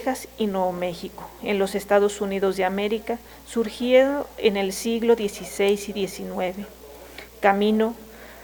y Nuevo México, en los Estados Unidos de América, surgido en el siglo XVI y XIX. Camino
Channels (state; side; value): identical; both; correlation 1.00